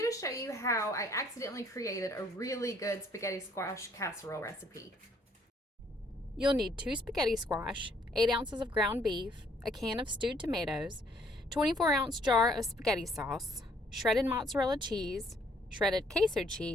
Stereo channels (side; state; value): both; normal; correlation 0.65